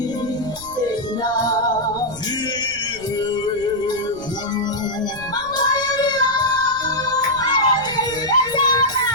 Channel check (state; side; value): noise; right; rumble, 19 dB below the sound